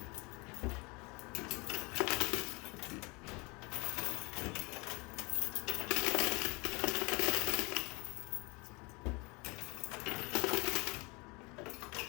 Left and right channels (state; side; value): quieter; right; 27.2 dB